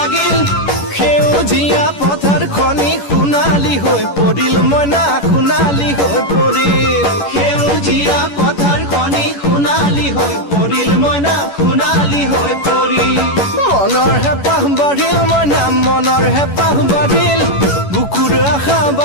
সেউজীয়া পথাৰ খনি সোণালী হৈ পৰিল মইনা, সোণালী হৈ পৰিল। সেউজীয়া পথাৰ খনি সোণালী হৈ পৰিল মইনা, সোণালী হৈ পৰিল। মনৰ হেঁপাহ বাঢ়িল মইনা, মনৰ হেঁপাহ বাঢ়িল, বুকুৰ আশা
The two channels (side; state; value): right; late; 11 ms